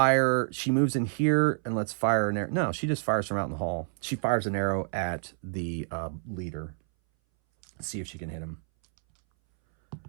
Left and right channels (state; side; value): silent; left; 59 dB below the other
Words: She moves in here and lets fire an arrow. No, she just fires from out in the hall. She fires an arrow at the leader. See if she can hit him.